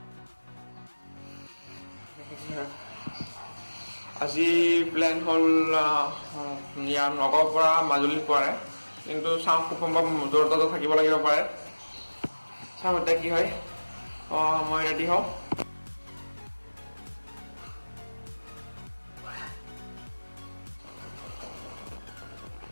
আজি প্লেন হ'ল ইয়াৰ নগাঁৱৰ পৰা মাজুলী পোৱাৰে কিন্তু চাওঁ খুব সম্ভৱ জৰহাটতো থাকিব লাগিব পাৰে চাওঁ এতিয়া কি হয় মই ৰেডি হওঁ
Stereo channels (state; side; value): inverted; both; correlation -1.00